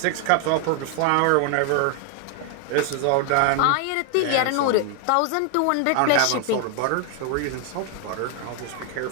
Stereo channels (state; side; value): different; both; correlation 0.00